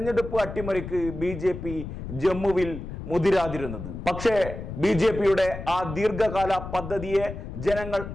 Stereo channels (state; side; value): noise; left; rumble, 9 dB below the sound